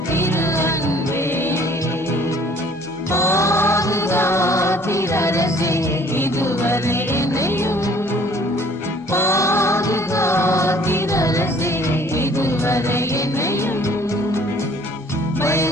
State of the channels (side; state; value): both; normal; correlation 0.56